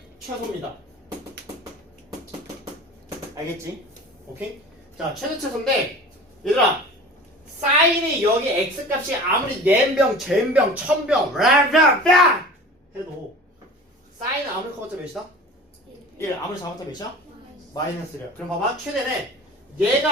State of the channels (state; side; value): normal; both; correlation 0.39